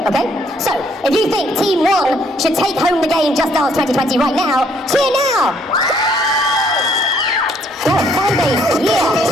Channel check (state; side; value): normal; both; correlation 0.66